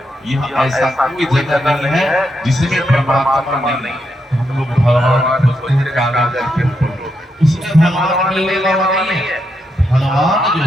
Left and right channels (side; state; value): both; normal; correlation 0.82